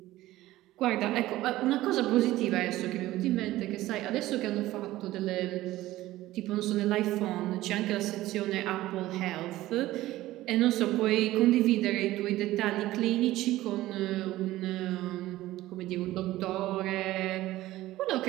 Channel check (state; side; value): quieter; left; 16.2 dB